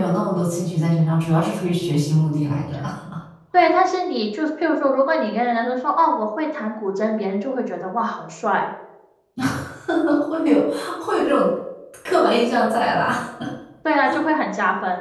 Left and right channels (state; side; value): identical; both; correlation 1.00